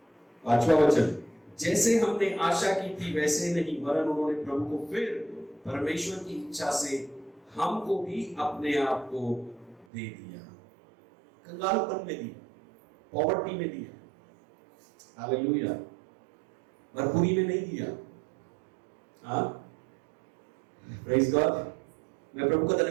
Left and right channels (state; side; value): drops out; left; at 9.9 s